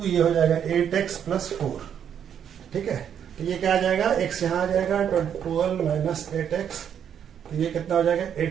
ये हो जाएगा 8x प्लस 4। ठीक है, तो ये क्या आ जाएगा, x यहाँ आ जाएगा 12 माइनस 8x, तो ये कितना हो जाएगा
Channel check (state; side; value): quieter; left; 8.7 dB